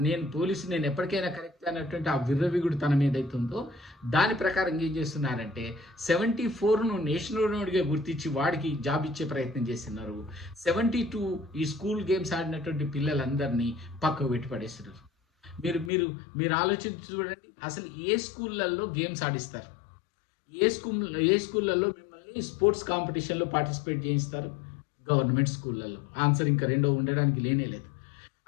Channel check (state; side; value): drops out; right; at 15.9 s